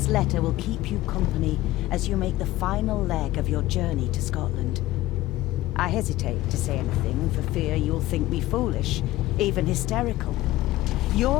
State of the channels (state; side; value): quieter; right; 16.5 dB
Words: letter will keep you company as you make the final leg of your journey to Scotland. I hesitate to say anything for fear you'll think me foolish, even hysterical.